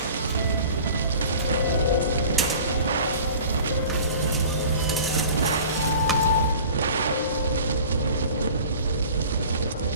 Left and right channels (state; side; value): inverted; both; correlation -0.43